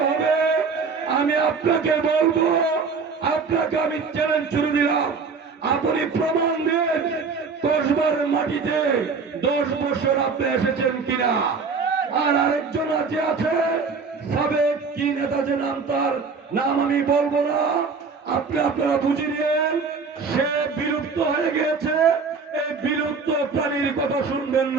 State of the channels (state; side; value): quieter; left; 5.0 dB